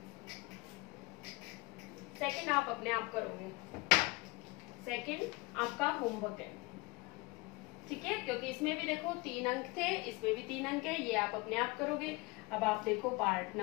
सेकंड आप अपने आप करोगे, सेकंड आपका होमवर्क है, ठीक है, क्योंकि इसमें भी देखो 3 अंक थे, इसमें भी 3 अंक है, ये आप अपने आप करोगे। अब आप देखो पार्ट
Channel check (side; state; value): right; quieter; 24.6 dB